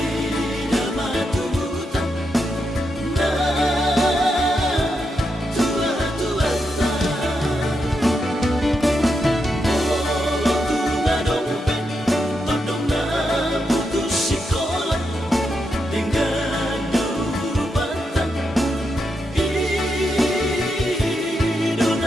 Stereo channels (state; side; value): normal; both; correlation 0.84